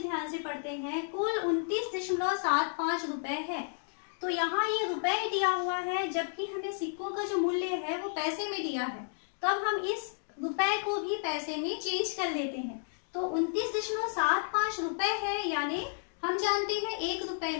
ध्यान से पढ़ते हैं। कुल 29.75 रुपए है। तो यहाँ ये रुपए दिया हुआ है जबकि हमें सिक्कों का जो मूल्य है वो पैसे में दिया है। तो अब हम इस रुपए को भी पैसे में चेंज कर लेते हैं। तो 29.75 रुपए है, यानी हम जानते हैं 1 रुपए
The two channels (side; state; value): right; silent; digital silence